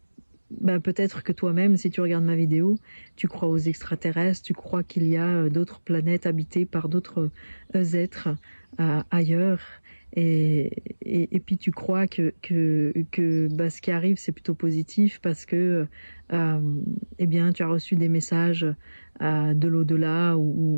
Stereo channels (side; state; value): both; inverted; correlation -1.00